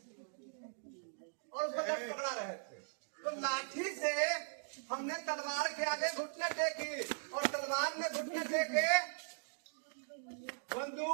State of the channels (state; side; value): silent; left; digital silence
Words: और उसको लठ पकड़ा रहे थे। तो लाठी से हमने तलवार के आगे घुटने टेकी और तलवार ने घुटने टेके